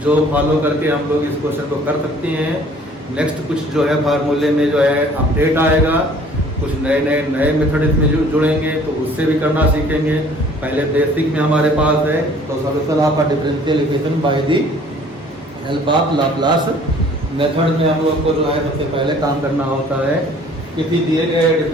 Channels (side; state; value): both; normal; correlation 0.54